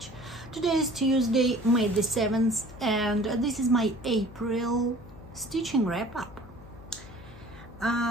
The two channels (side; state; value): left; noise; hum, 18 dB below the sound